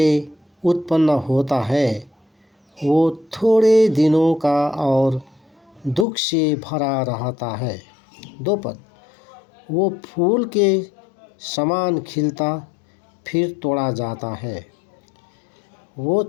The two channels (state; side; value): drops out; right; at 6.1 s